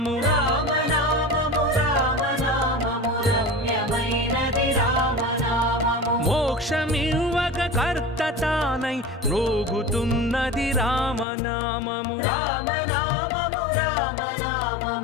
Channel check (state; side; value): drops out; right; at 11.2 s